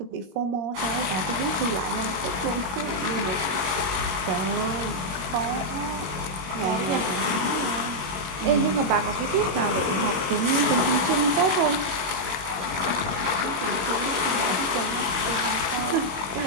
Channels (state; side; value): late; left; 21 ms